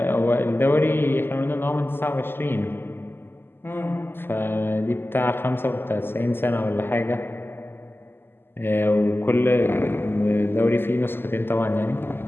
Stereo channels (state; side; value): late; right; 0.10 ms